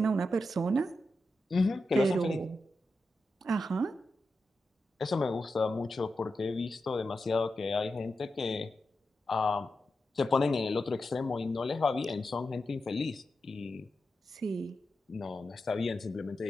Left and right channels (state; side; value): normal; both; correlation 0.89